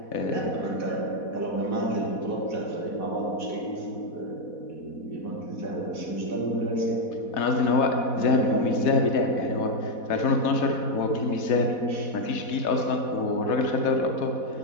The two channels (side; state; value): right; late; 4.1 ms